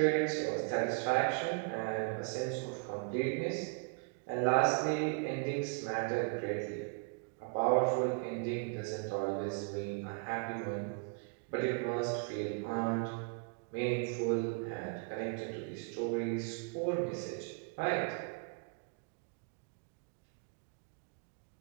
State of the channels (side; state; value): left; quieter; 36.8 dB